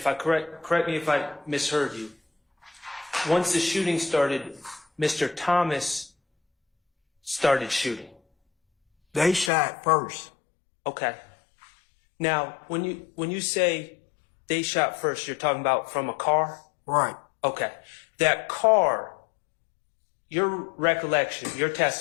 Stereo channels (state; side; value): drops out; right; at 9.5 s